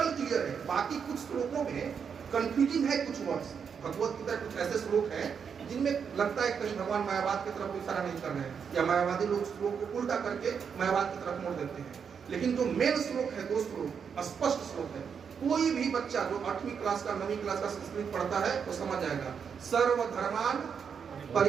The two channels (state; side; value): quieter; left; 6.8 dB